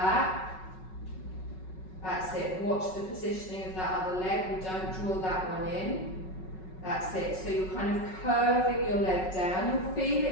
That's it. Watch the positioning of that other leg. We don't draw that one in. That's it. So you're kind of curving your leg down. You'll feel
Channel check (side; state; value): right; late; 5.4 ms